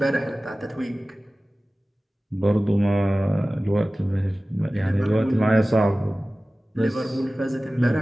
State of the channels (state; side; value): normal; both; correlation 0.97